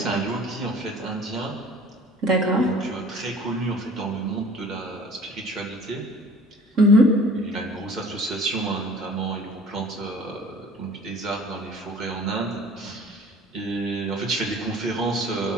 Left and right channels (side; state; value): both; normal; correlation 0.48